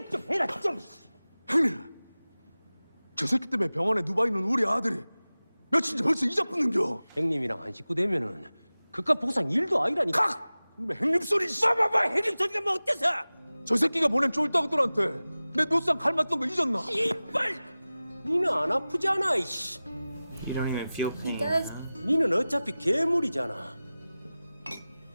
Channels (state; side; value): inverted; both; correlation -0.97